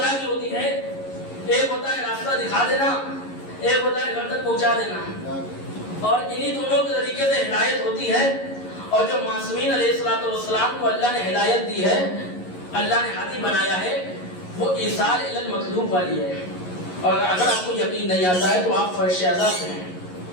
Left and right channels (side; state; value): right; late; 11 ms